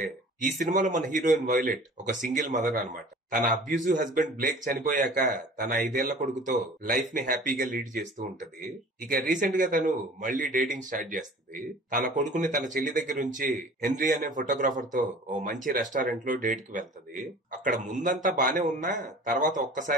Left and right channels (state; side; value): normal; both; correlation 0.44